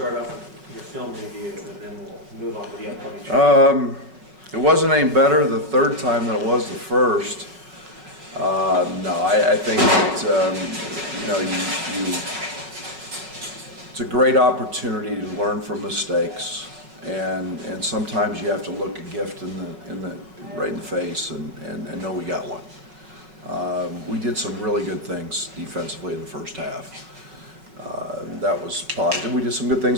off with your film review, and then we'll move on to the upcoming show. It wasn't any better the third time than it was the first. No, I think that, it's a great opportunity to learn from mistakes, and sometimes you have to look a gift right in the face and know we got one. We did some really good things defensively in the first half. That was positive. We did some good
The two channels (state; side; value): late; left; 5.5 ms